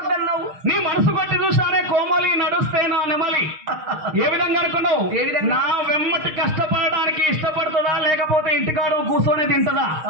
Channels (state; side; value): late; left; 6.4 ms